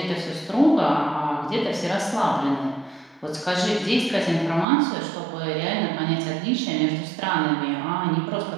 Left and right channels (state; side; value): drops out; left; at 4.7 s